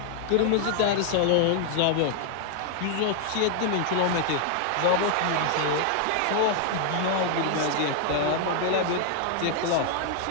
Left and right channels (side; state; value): both; different; correlation 0.00